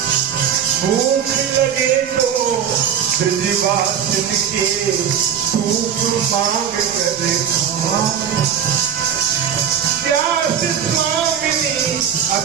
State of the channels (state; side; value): quieter; left; 8.4 dB